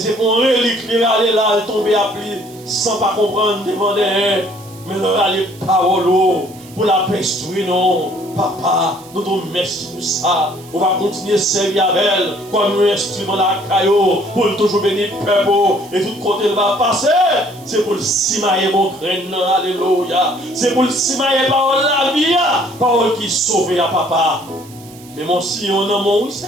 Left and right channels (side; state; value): right; noise; hiss, 22 dB below the sound